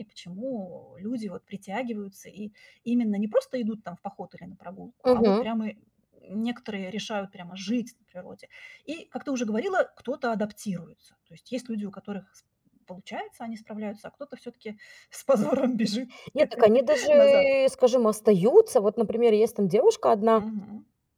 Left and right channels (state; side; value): identical; both; correlation 1.00